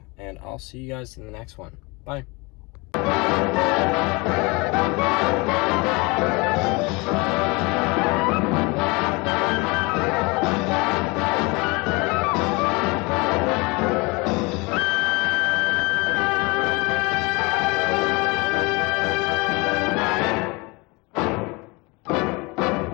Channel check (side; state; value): right; quieter; 26.6 dB